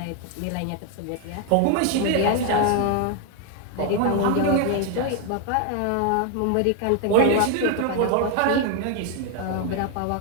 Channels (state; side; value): different; both; correlation 0.00